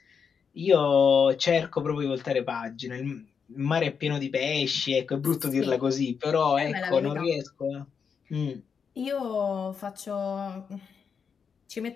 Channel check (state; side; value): quieter; right; 6.4 dB